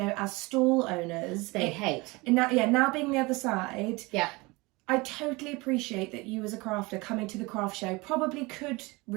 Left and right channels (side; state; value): left; quieter; 24.1 dB